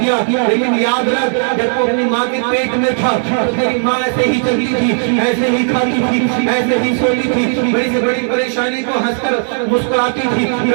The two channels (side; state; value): left; silent; digital silence